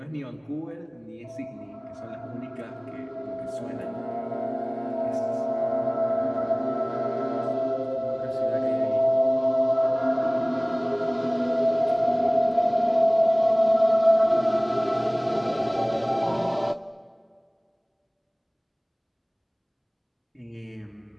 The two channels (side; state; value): both; identical; correlation 1.00